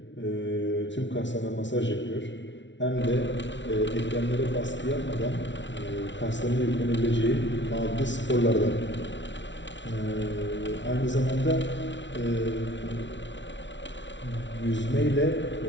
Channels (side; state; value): right; late; 0.54 ms